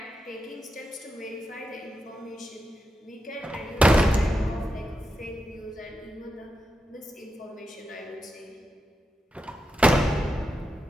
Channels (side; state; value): both; normal; correlation 0.88